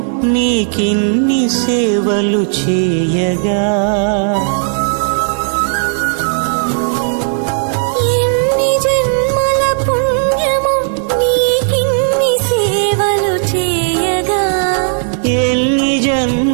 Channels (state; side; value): silent; left; digital silence